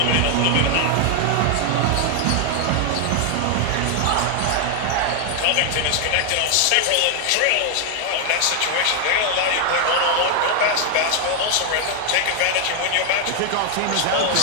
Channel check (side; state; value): both; different; correlation 0.00